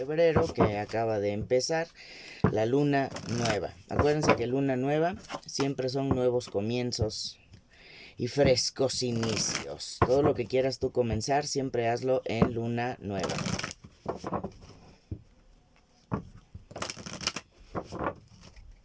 que acaba de empezar, la luna nueva. Acuérdense que luna nueva siempre son nuevos comienzos y frescos inicios. Todo lo que quieras tú comenzar, siempre hazlo en luna nueva.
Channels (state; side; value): identical; both; correlation 1.00